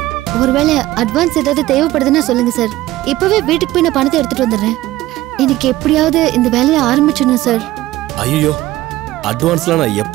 ஒருவேளை அட்வான்ஸ் ஏதாவது தேவைப்படுதுன்னா சொல்லுங்க சார். இப்பவே வீட்டுக்கு போய் நான் பணத்தை எடுத்துட்டு வந்துடுறேன். இன்னைக்கு எப்படியாவது இந்த வேலையை ஆரம்பிச்சிடணும் சார். ஐயோ, அட்வான்ஸ்லாம் நான்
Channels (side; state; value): left; quieter; 16.4 dB